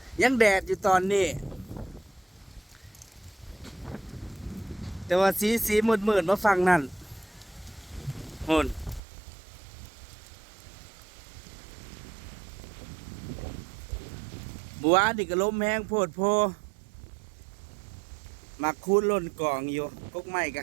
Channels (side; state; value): left; drops out; at 9.0 s